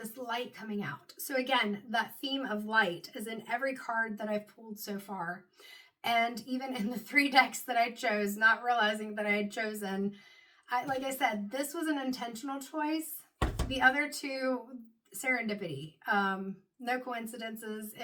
light coming out. So again, that theme of light is in every card that I've pulled so far. And even in the 3 decks that I chose, not realizing that I had chosen, like I said, this was an intentional choice. The other 2, serendipity. No coincidences.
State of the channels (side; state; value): both; identical; correlation 1.00